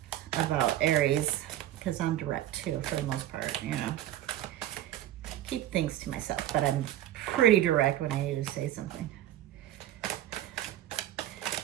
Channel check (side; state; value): left; quieter; 13.2 dB